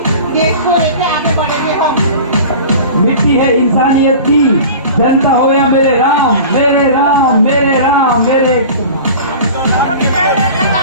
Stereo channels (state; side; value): inverted; both; correlation -0.38